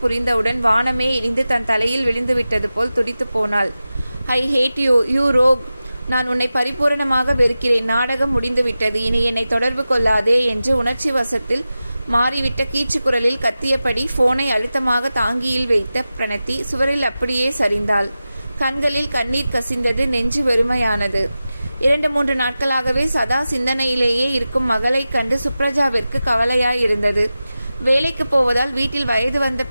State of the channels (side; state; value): both; inverted; correlation -0.94